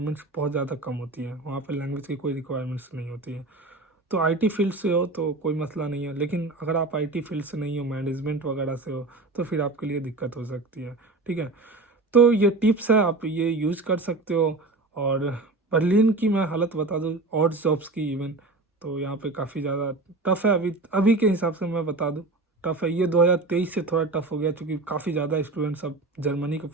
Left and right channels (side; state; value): left; quieter; 3.2 dB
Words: बहुत ज़्यादा कम होती है, वहाँ पे लैंग्वेज की कोई रिक्वायरमेंट्स नहीं होती है। तो आईटी फील्ड से हो तो कोई मसला नहीं है, लेकिन अगर आप आईटी फील्ड से नहीं हो, मैनेजमेंट वगैरह से हो, तो फिर आपके लिए दिक्कत हो सकती है, ठीक है। तो ये टिप्स है, आप ये यूज़ कर सकते हो। और बर्लिन की मैं हालत बता दूँ, और जॉब्स की इवन, तो यहाँ पे काफ़ी ज़्यादा टफ है अभी अभी के हिसाब से मैं बता दूँ, टफ है। ये 2023 से थोड़ा टफ हो गया, क्योंकि काफ़ी ज़्यादा स्टूडेंट्स अब जर्मनी को